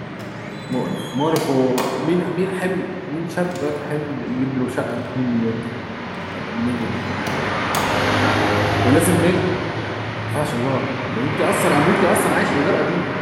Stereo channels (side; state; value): both; identical; correlation 1.00